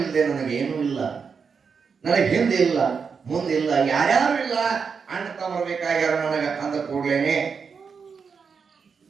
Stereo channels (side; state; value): left; quieter; 5.8 dB